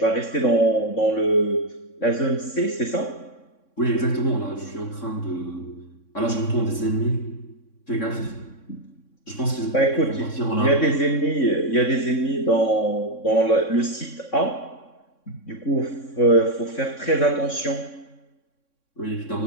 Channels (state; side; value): late; right; 3.6 ms